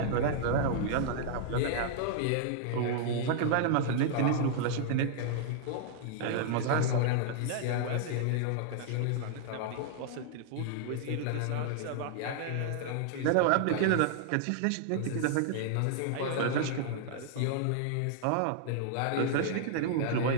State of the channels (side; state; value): both; different; correlation -0.01